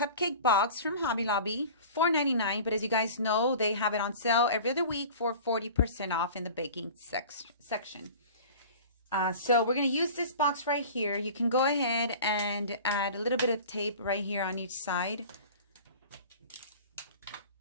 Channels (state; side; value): inverted; both; correlation -0.40